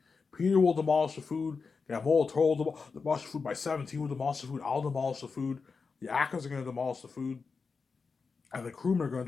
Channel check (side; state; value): right; quieter; 4.9 dB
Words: Peter will demolish the food. Guillermo del Toro will demolish the food. My 17 will demolish the food. I'll demolish the food. The actors are gonna demolish the food, and the crewmen are gonna